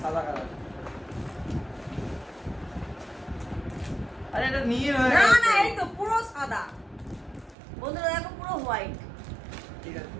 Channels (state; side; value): drops out; left; at 7.6 s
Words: সাদা কালার। আরে এটা নীল হয়ে না গেছে। না এই তো পুরো সাদা বন্ধুরা, দেখো পুরো হোয়াইট। ঠিক আছে,